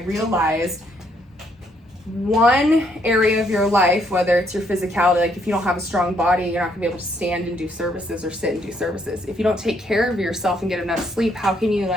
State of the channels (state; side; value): normal; both; correlation 0.71